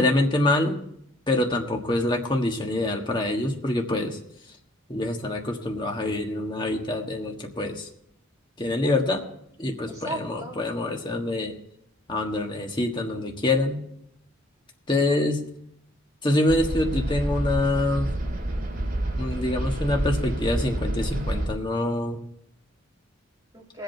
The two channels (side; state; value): both; normal; correlation 0.64